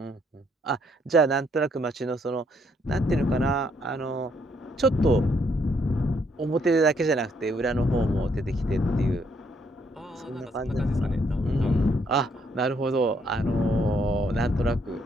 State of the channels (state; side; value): normal; both; correlation 0.71